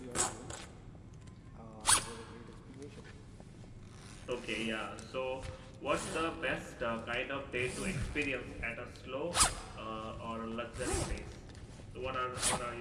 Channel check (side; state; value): both; identical; correlation 1.00